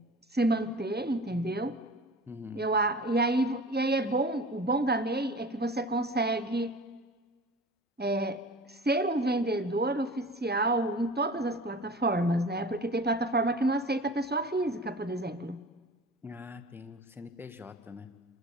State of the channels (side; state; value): both; normal; correlation 0.39